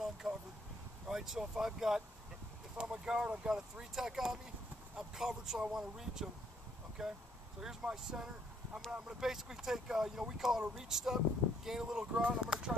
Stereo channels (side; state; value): both; normal; correlation 0.68